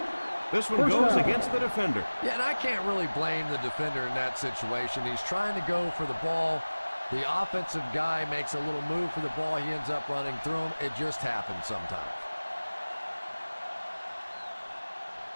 This one goes against the defender. Yeah, and I can't really blame the defender in that situation. He's trying to go for the ball. The offensive guy makes a little move for the ball. He ends up running through him. It just happens sometimes.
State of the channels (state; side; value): inverted; both; correlation -1.00